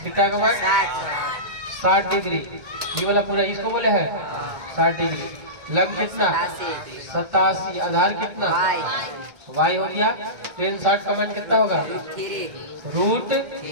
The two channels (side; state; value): left; late; 2.2 ms